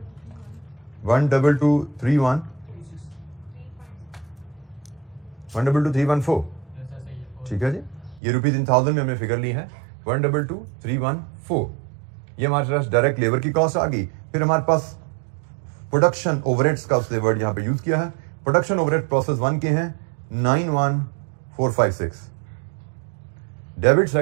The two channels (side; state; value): left; drops out; at 8.2 s